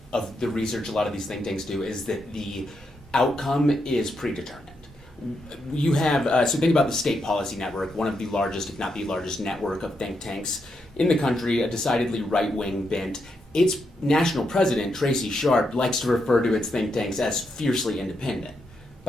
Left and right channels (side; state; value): both; normal; correlation 0.82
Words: of the research a lot of these think tanks do is that the outcome is predetermined. You have so think about the State Policy Network, one of the largest, if not the largest, network of think tanks in the country, a decidedly right-wing bent. Its national president, Tracy Sharp, likes to refer to its think tanks as fiercely independent.